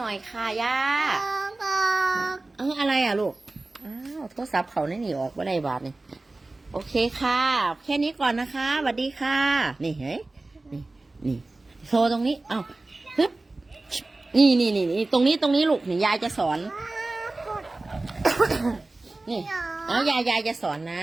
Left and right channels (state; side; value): quieter; left; 3.1 dB